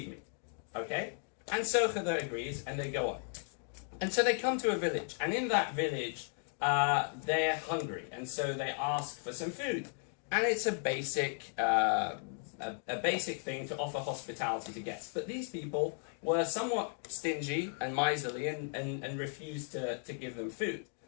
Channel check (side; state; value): right; silent; 54 dB below the other